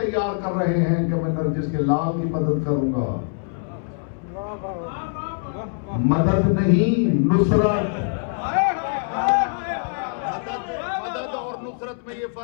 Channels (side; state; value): right; silent; 63 dB below the other